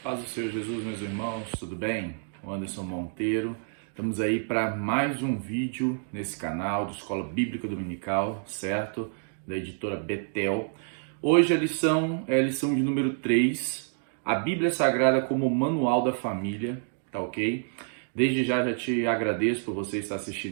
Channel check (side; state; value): left; silent; digital silence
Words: Paz do Senhor Jesus, meus irmãos, tudo bem? O Anderson Monteiro. Estamos aí para mais um vídeo nesse canal de Escola Bíblica Dominical, certo? Da editora Betel. Hoje a lição é a lição de número 3, a Bíblia Sagrada como manual da família, tá ok? Desde já te agradeço por você estar